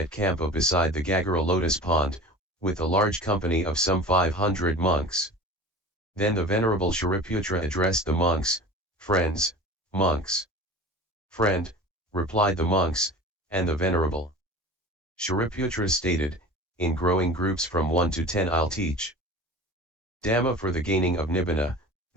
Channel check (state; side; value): normal; both; correlation 0.38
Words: Kampa beside the Gagara lotus pond, with a large company of some 500 monks. Then the Venerable Shariputra addressed the monks, Friends, monks. Friend, replied the monks, and the Venerable Shariputra stated, in growing groups from 1 to 10 I'll teach Dhamma for the gaining of Nibbana,